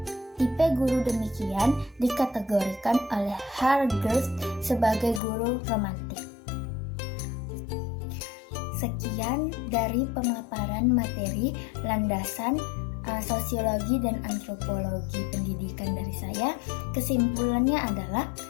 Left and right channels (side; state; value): right; drops out; at 5.2 s